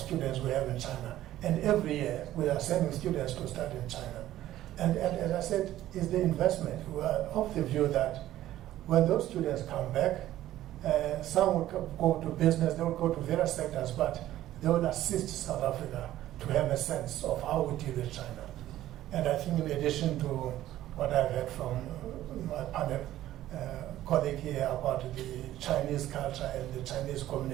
we have in China. And every year, we are sending students to study in China. And as I said, is the investment. We are of the view that when those students come back, some will go to business, they will go to various sectors, but they will assist South Africa to have a sense of how we deal with China. And I think in addition to what I've heard from my panel colleague here about the Chinese culture and the Chinese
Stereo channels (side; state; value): left; quieter; 13.8 dB